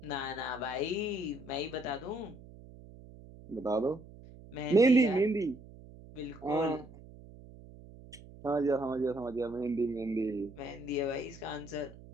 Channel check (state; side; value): noise; right; hum, 18 dB below the sound